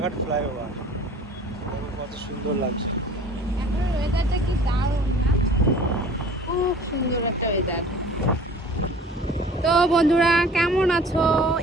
ফ্লাইওভার, কত সুন্দর লাগছে। এখন ওয়েদারটা কি দারুণ না? খুব সুন্দর একটা ওয়েদার। তো বন্ধুরা কেমন আছো?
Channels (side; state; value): both; normal; correlation 0.47